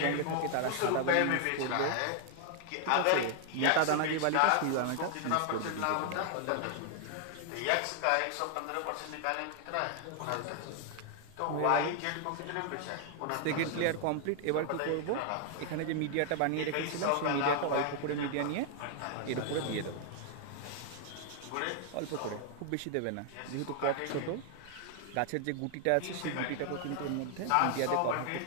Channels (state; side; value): different; both; correlation 0.00